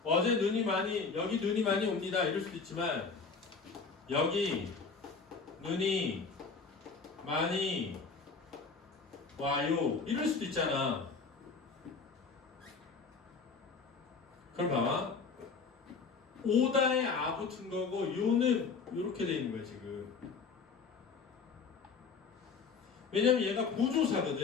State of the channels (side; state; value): right; quieter; 4.9 dB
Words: 어제 여기 눈이 많이 옵니다. 이럴 수도 있지만 여기 눈이 많이 와요. 이럴 수도 있잖아. 그럼 봐봐. 오다에 아 붙은 거고 요는 이렇게 돼 있는 거야 지금. 왜냐면 얘가